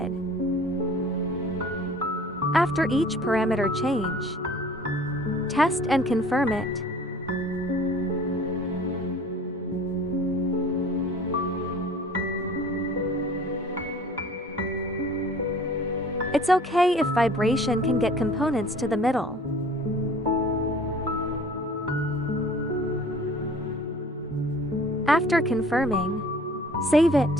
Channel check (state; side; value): normal; both; correlation 0.48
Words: After each parameter change, test and confirm it. It's okay if vibration can get components to the middle. After confirming, save